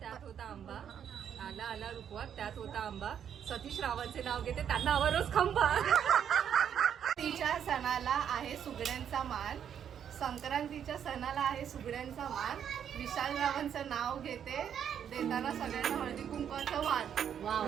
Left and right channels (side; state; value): left; quieter; 8.7 dB